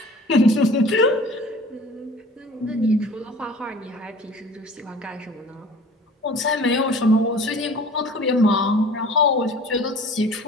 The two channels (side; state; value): both; normal; correlation 0.45